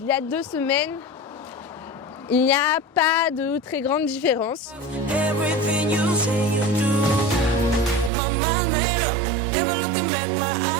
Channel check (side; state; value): left; drops out; at 8.1 s